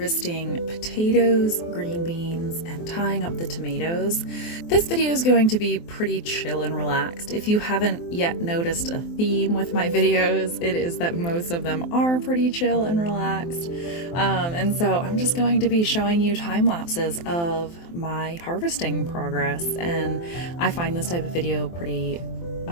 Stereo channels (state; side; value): late; right; 23 ms